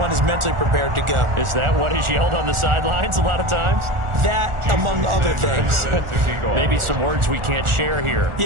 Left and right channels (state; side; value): late; left; 1.4 ms